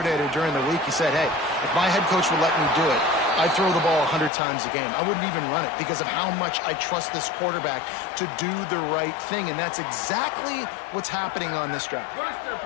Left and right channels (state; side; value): drops out; right; at 4.3 s